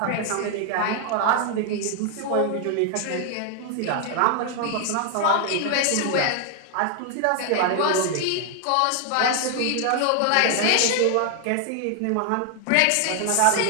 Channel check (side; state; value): both; different; correlation 0.00